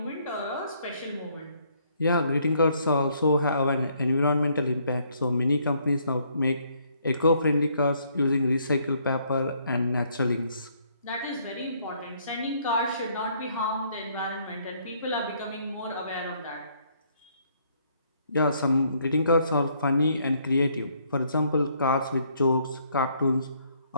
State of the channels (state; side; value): inverted; both; correlation -0.68